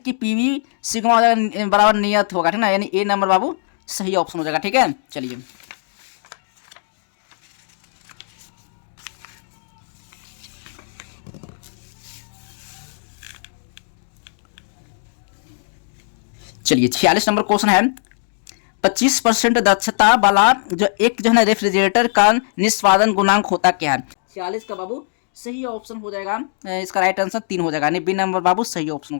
पीवी सिग्मा बराबर नियत होगा, ठीक ना, यानी ए नंबर बाबू सही ऑप्शन हो जाएगा, ठीक है। चलिए चलिए 46 नंबर क्वेश्चन है, 25% दक्षता वाला जो एक जो है ना रेफ्रिजरेटर का निष्पादन गुणांक होता क्या है। 46 का बाबू सही ऑप्शन हो जाएगा, इसका राइट आंसर 3 हो जाएगा, बी नंबर बाबू सही ऑप्शन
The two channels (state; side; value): silent; right; digital silence